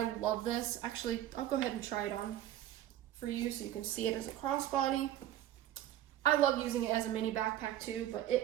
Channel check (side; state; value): left; quieter; 12.5 dB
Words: love this. Actually, I'll go ahead and try it on for you so you can see it as a crossbody. I love using it as a mini backpack too, but